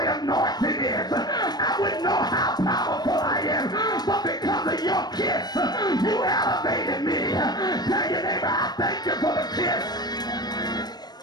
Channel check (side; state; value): right; late; 0.19 ms